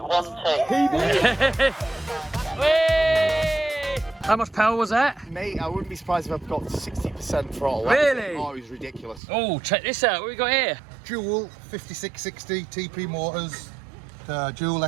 Whee! How much power was that? Mate, I wouldn't be surprised if I've got 60% throttle. Really? Oh, it was ridiculous. Oh, check this out. What we got here? Dual 5660 TP motors, dual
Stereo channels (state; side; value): drops out; left; at 9.2 s